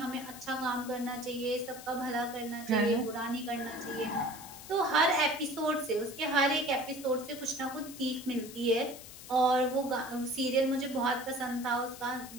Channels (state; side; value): noise; left; hiss, 15 dB below the sound